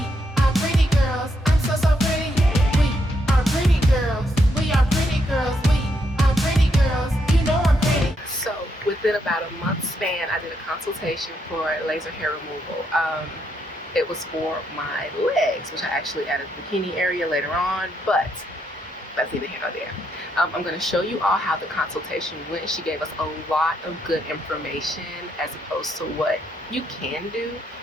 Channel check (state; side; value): normal; both; correlation 0.77